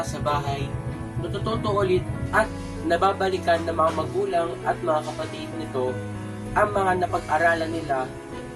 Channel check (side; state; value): both; identical; correlation 1.00